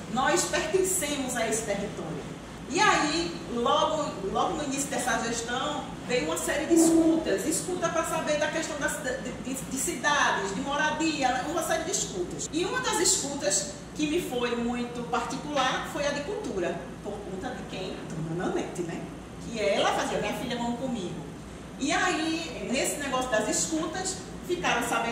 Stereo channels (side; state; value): both; identical; correlation 1.00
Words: pertencemos a esse território? E aí, logo no início dessa gestão, veio uma série de escuta para saber da questão de cidades, de moradia, uma série de escutas. E uma das escutas que me foi muito particular foi a de cultura, por conta de quem? Dona Nanete, né? Que ela fazia, minha filha, vamos comigo. E aí, nesse negócio das escutas, ficaram